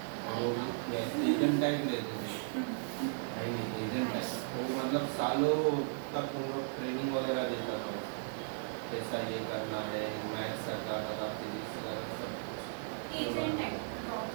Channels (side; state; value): left; silent; digital silence